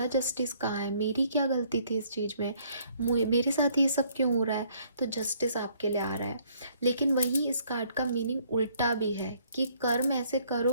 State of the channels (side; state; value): both; inverted; correlation -0.64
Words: जस्टिस कहाँ है, मेरी क्या गलती थी इस चीज़ में, मेरे साथ ये सब क्यों हो रहा है, तो जस्टिस आपके लिए आ रहा है। लेकिन वहीं इस कार्ड का मीनिंग उल्टा भी है कि कर्म ऐसे